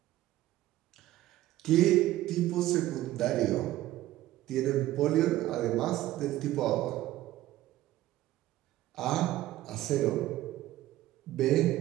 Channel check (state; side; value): quieter; left; 15.3 dB